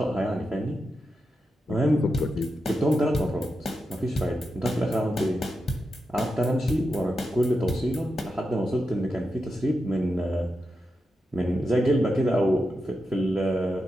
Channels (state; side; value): normal; both; correlation 0.88